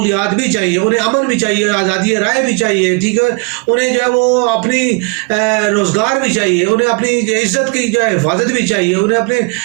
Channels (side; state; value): left; quieter; 31.4 dB